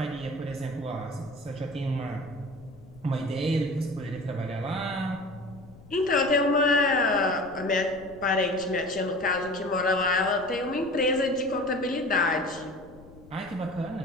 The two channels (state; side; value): noise; left; rumble, 21 dB below the sound